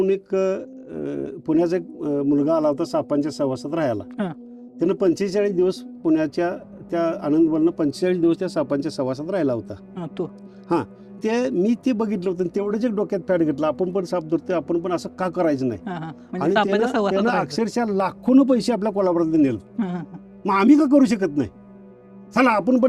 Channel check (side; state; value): both; identical; correlation 1.00